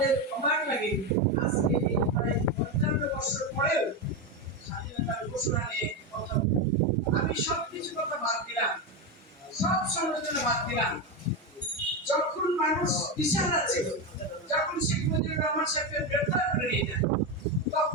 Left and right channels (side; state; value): both; normal; correlation 0.13